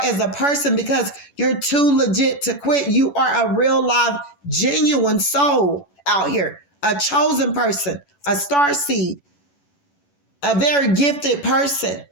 a person because you're too legit to quit. You are a real live, genuine soul out here, a chosen person, a star seed, a very gifted person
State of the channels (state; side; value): late; right; 11 ms